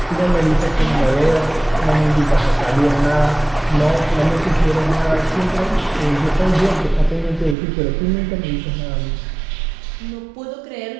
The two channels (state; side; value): drops out; left; at 7.6 s